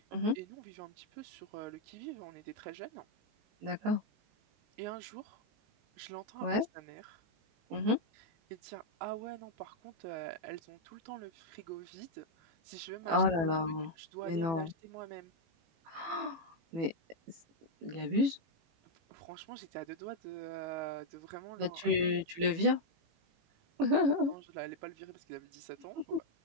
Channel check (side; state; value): left; late; 18 ms